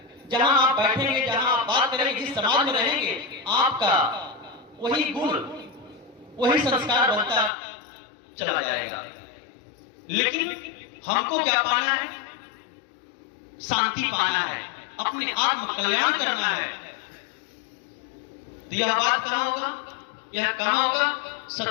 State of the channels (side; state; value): right; drops out; at 7.5 s